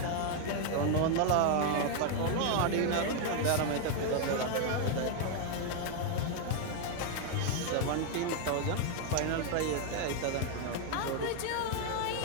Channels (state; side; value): different; both; correlation 0.00